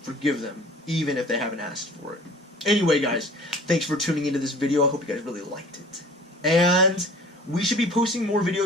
Forgive them, even if they haven't asked for it. Anyway, guys, thanks for tuning into this video. I hope you guys really liked it. And we should be posting more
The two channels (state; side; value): normal; both; correlation 0.46